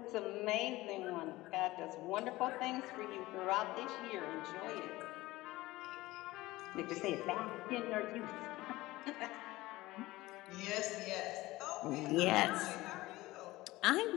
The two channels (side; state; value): right; quieter; 18.7 dB